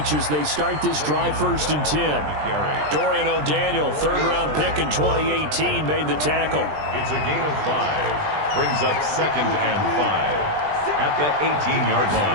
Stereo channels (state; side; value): late; left; 20 ms